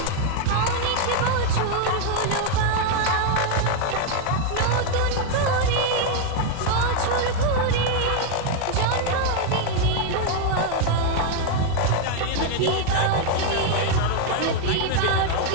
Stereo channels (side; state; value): both; different; correlation 0.00